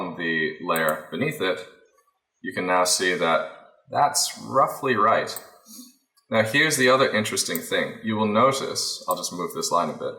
the layer beneath it, you can now see that that's roughly right. Now here's the other interesting thing. You will notice, I'll just move this line a bit.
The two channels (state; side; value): identical; both; correlation 1.00